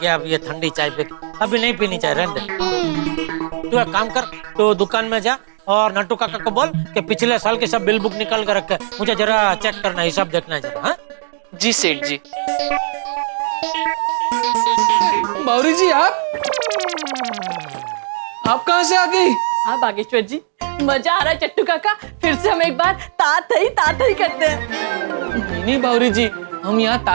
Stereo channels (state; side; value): silent; left; digital silence